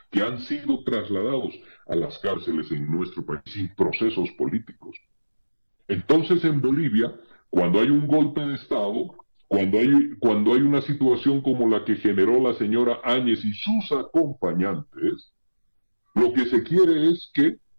que han sido trasladados a las cárceles en nuestro país sin procesos políticos. Entonces en Bolivia, cuando hay un golpe de Estado, cuando hay una situación como la que generó la señora Áñez y sus acompañantes, lo que se quiere es que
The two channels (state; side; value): inverted; both; correlation -1.00